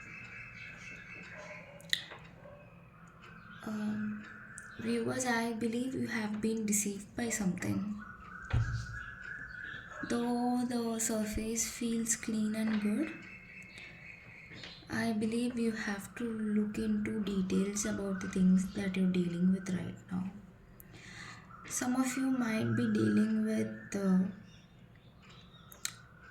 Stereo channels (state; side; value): identical; both; correlation 1.00